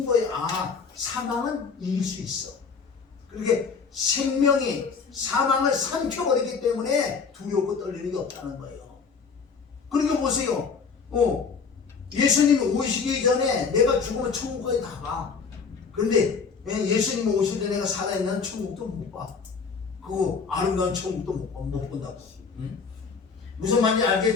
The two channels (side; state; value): right; quieter; 5.4 dB